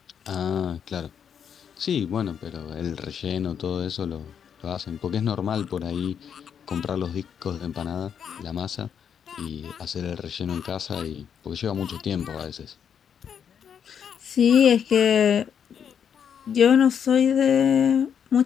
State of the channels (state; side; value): quieter; right; 7.9 dB